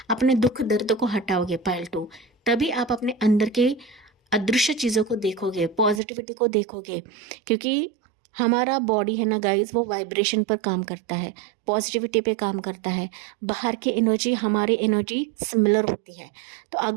अपने दुख दर्द को हटाओगे पायल 2, तभी आप अपने अंदर के अदृश्य चीज़ों को देखोगे, पॉजिटिविटी को देखोगे। क्योंकि हमारा बॉडी है ना गाइज, वो वाइब्रेशन पर काम करता है, पॉजिटिविटी पे काम करता है, बाहर की एनर्जी हमारी एनर्जी सिमिलर होती है। तो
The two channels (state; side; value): drops out; left; at 6.0 s